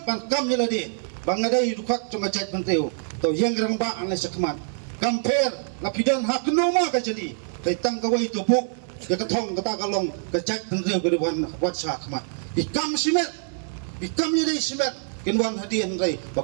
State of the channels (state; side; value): silent; left; 62 dB below the other